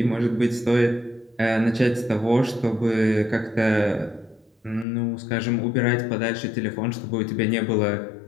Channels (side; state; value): right; drops out; at 4.9 s